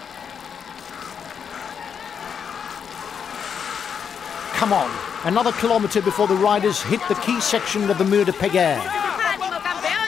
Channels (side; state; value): right; quieter; 7.2 dB